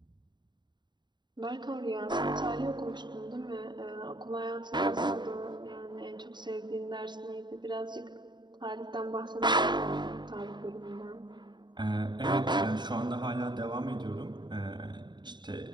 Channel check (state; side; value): late; left; 0.22 ms